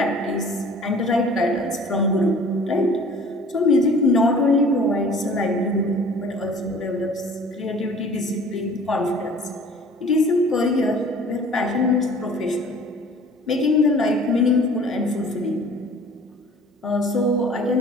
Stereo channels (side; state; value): both; normal; correlation 0.49